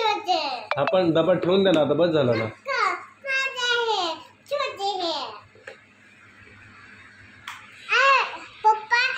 आपण डबा ठेवून दे ना आता, बस झाला ना.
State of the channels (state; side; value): identical; both; correlation 1.00